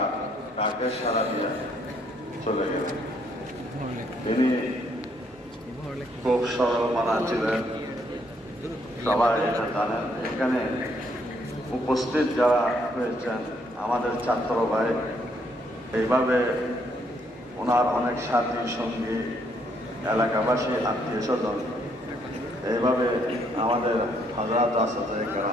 তাকে সারা দিয়ে চলে গেলেন। তিনি খুব সরল মানা ছিলেন, সবাই এটা জানেন। এখানে উপস্থিত যারা হয়েছেন আমাদের ছাত্র ভাই, এইভাবে ওনার অনেক সাথী সঙ্গী, এলাকাবাসী, আত্মীয় স্বজন, এইভাবে আমাদের হাজরাত আসাদে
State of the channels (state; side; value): normal; both; correlation 0.70